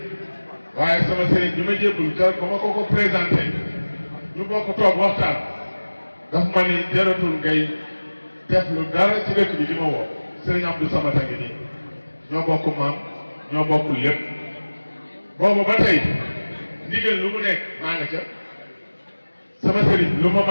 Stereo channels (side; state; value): both; inverted; correlation -1.00